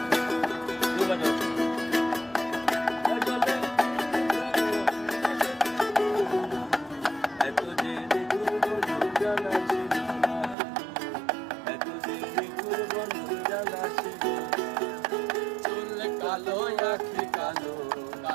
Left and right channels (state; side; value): drops out; left; at 10.6 s